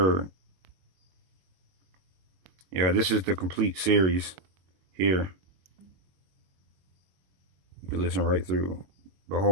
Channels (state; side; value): late; left; 22 ms